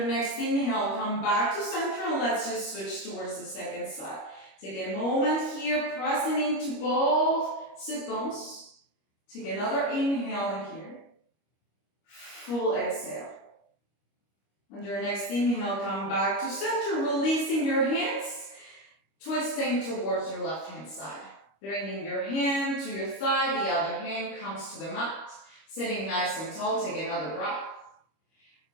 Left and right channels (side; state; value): right; late; 25 ms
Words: next inhale, come back to center and let's just switch towards the second side. Take a moment here, pressing into both sit bones. Take another inhale in here. Full exhale. On your next inhale, come back to center, releasing your hands, twisting towards your left hand side. Bringing your hand to your thigh, the other hand comes to the mat. Sitting nice and tall, take another breath.